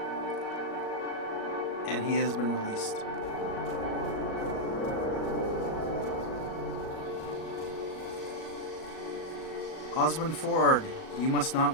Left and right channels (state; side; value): late; right; 37 ms